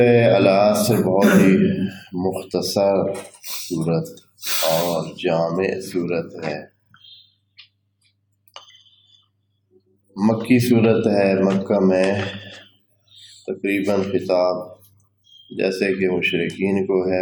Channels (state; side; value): identical; both; correlation 1.00